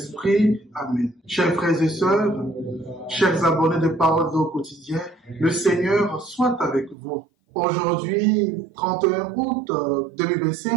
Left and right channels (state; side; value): drops out; left; at 7.0 s